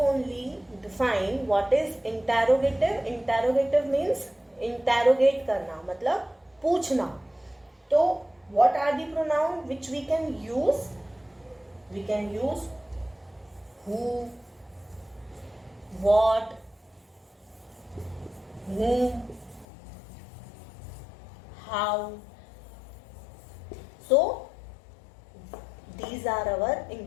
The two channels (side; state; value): right; drops out; at 19.7 s